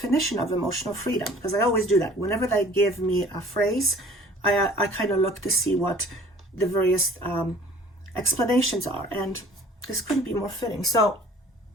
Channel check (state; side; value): normal; both; correlation 0.50